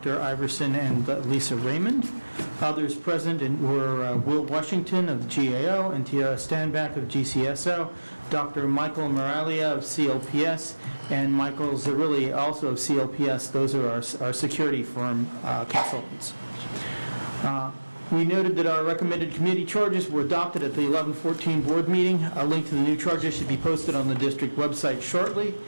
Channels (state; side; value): inverted; both; correlation -1.00